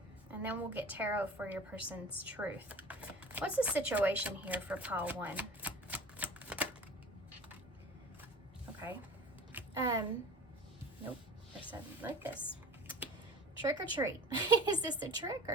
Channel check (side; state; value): both; normal; correlation 0.40